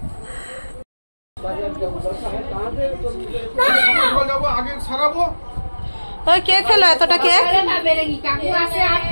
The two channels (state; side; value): inverted; both; correlation -1.00